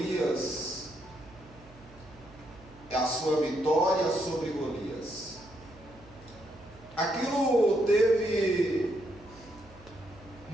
é a sua vitória sobre Golias. Aquilo teve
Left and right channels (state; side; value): noise; right; hum, 23 dB below the sound